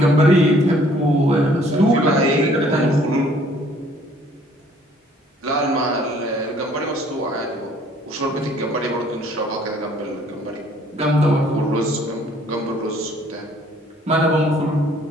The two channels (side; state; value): both; normal; correlation 0.59